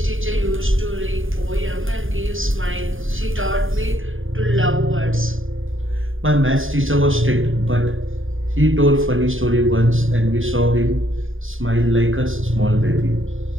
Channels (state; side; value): late; left; 0.59 ms